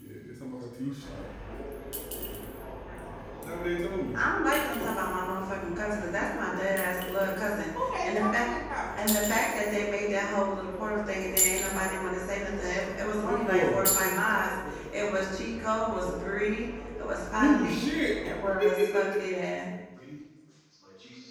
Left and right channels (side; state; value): both; identical; correlation 1.00